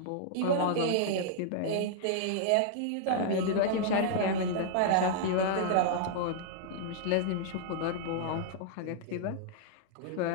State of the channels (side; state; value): both; different; correlation -0.01